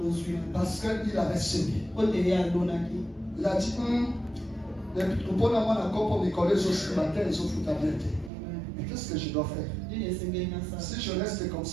Parce qu'il avait semé. Il a dit, mais qu'est-ce que je dois faire? Si je reste comme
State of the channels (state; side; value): drops out; left; at 8.3 s